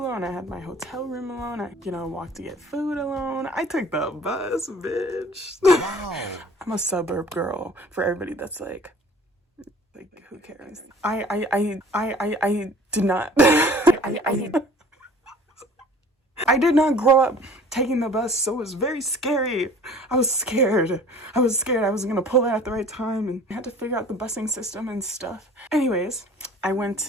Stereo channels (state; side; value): normal; both; correlation 0.48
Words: I had my hotel room alone. I, walked to get food alone. I took the bus, bitch. Wow. I'm a suburb girl for everybody that's like who cares? I did not. I did not grow up taking the bus, so it was very scary. I was scared. I was gonna pull it at the right time and I had to figure out the busing system and stuff. Anyways, I went